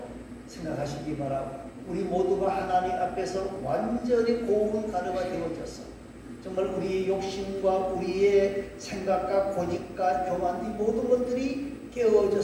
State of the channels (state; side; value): identical; both; correlation 1.00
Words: 생각하시기 바라고, 우리 모두가 하나님 앞에서 완전히 고운 가루가 되어져서 정말 우리의 욕심과 우리의 생각과 고집과 교만, 이 모든 것들이